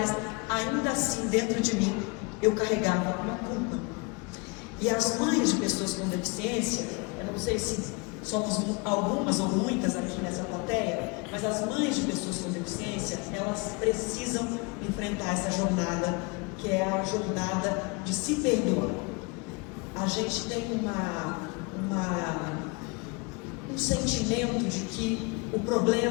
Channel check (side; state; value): right; quieter; 29.1 dB